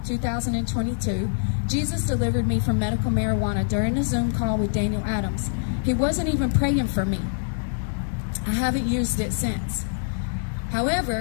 Jesus delivered me from medical marijuana during a Zoom call with Daniel Adams. He wasn't even praying for me. I haven't used it since.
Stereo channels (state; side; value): silent; right; digital silence